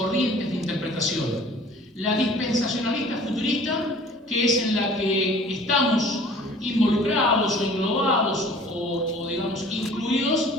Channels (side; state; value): both; normal; correlation 0.49